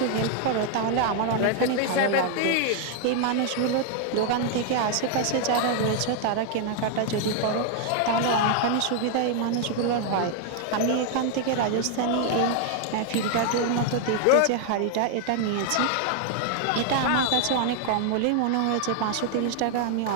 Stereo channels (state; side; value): different; both; correlation 0.00